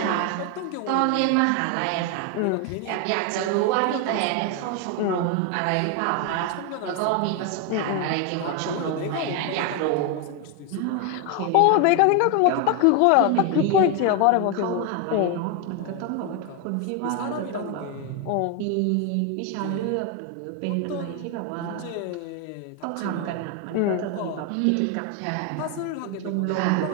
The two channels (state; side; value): different; both; correlation 0.01